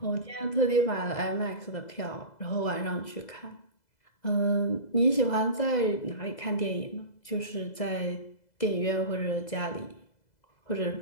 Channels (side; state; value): right; late; 2.0 ms